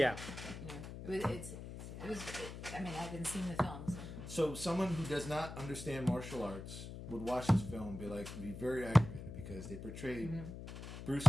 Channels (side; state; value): left; noise; hum, 10 dB below the sound